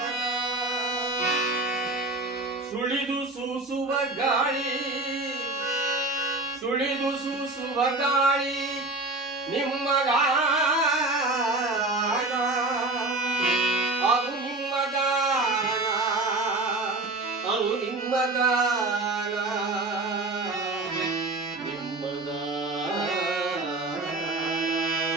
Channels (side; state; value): left; quieter; 3.0 dB